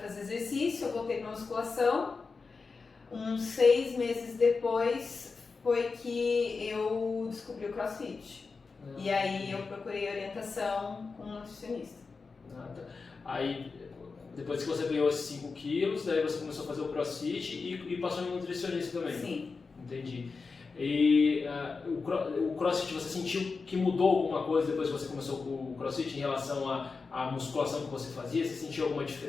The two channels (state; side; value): quieter; right; 4.5 dB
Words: exercício, eu voltei para musculação. Uns 6 meses depois foi que eu descobri o CrossFit. E aí eu procurei orientação com um nutricionista. Aí, depois que você ganhou esses 5 quilos, daí você começou a fazer o CrossFit e passou em nutricionista também? Sim. Entendi. E o CrossFit, você sentiu que mudou alguma coisa depois que você começou com o CrossFit em relação à musculação que você fazia? Você sentiu alguma